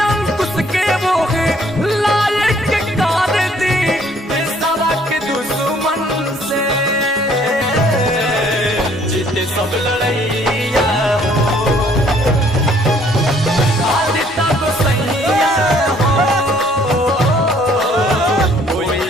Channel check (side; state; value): both; normal; correlation 0.61